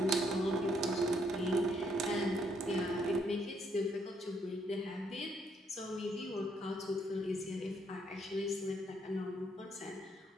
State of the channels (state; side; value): normal; both; correlation 0.71